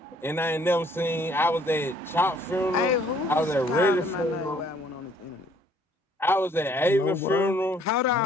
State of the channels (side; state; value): both; normal; correlation 0.61